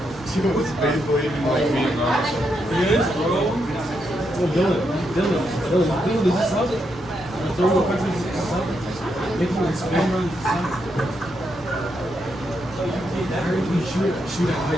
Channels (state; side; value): normal; both; correlation 0.81